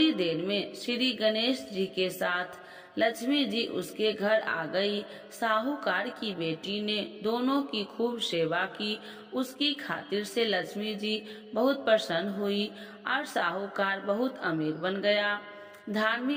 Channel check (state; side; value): identical; both; correlation 1.00